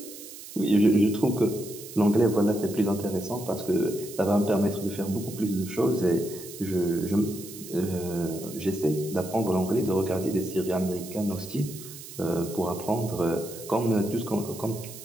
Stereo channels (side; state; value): right; noise; hiss, 14 dB below the sound